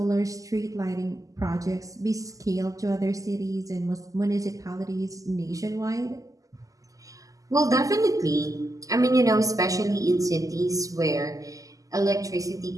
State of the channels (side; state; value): left; late; 0.17 ms